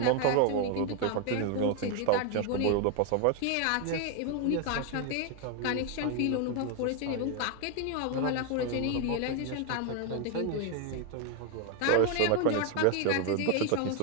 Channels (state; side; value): different; both; correlation 0.01